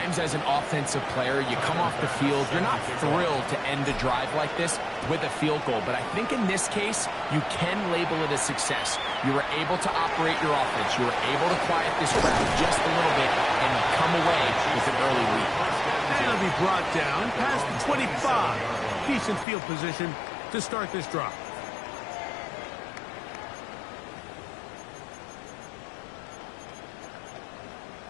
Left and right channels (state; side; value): drops out; right; at 19.5 s